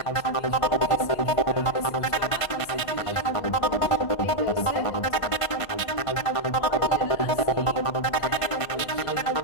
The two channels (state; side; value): late; right; 1.5 ms